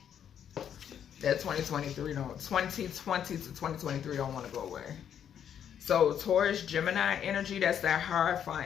That 2020 to 2023 don't want to go away. So Taurus, Gemini energy, that's that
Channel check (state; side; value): quieter; right; 9.0 dB